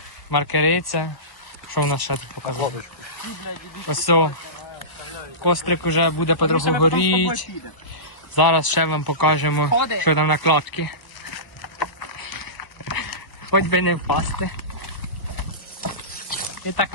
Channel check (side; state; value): right; late; 1.0 ms